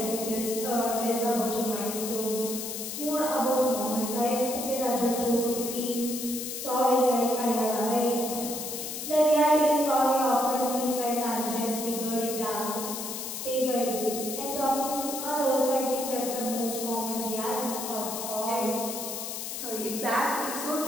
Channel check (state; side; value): noise; left; hiss, 6 dB below the sound